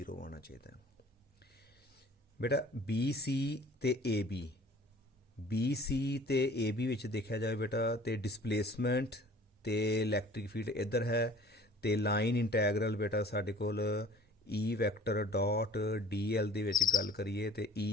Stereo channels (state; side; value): normal; both; correlation 0.49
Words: ਆਉਣਾ ਚਾਹੀਦਾ ਹੈ। ਬੇਟਾ BC ਤੇ AB ਵਿੱਚ ਦੇਖਿਆ ਜਾਵੇ ਬੇਟਾ ਤੇ ਡਿਸਪਲੇਸਮੈਂਟ ਤੇ ਇਲੈਕਟ੍ਰਿਕ ਫੀਲਡ ਇੱਧਰ ਹੈ, ਤੇ ਲਾਈਨ ਇੰਟੈਗਰਲ ਬੇਟਾ ਸਾਡੇ ਕੋਲ E ਵੈਕਟਰ ਡਾਟ DL ਦੇ ਵਿੱਚ ਗੱਲ ਕਰੀਏ ਤੇ